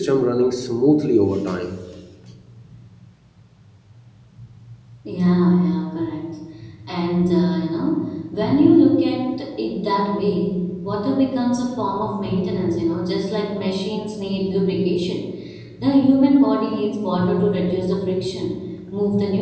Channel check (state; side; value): identical; both; correlation 1.00